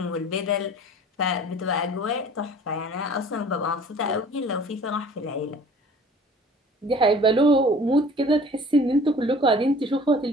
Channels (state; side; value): normal; both; correlation 0.48